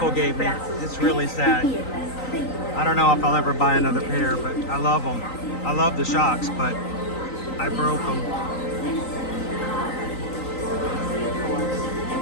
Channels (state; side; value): late; right; 3.9 ms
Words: gave me. It's really sad. I don't know if I'll ever buy another pair, but I love them. I love the shocks, but I broke them.